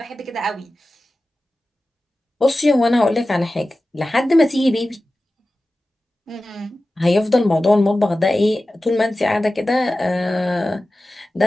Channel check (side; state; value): both; normal; correlation 0.95